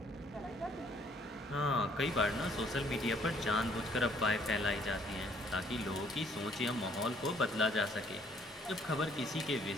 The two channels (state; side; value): normal; both; correlation 0.63